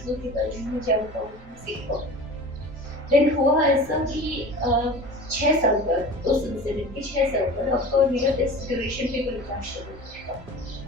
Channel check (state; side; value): normal; both; correlation 0.37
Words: के बारे में जान पाऊँगी, सीख पाऊँगी। देन हुआ ऐसा कि 6 साल बाद उस इंसिडेंट के 6 साल बाद आपका मेरा टेस्ट ड्यूरेशन पे कोई क्लैश हो।